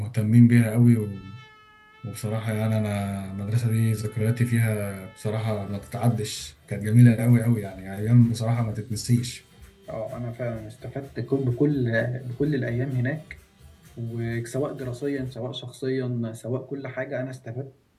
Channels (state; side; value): identical; both; correlation 1.00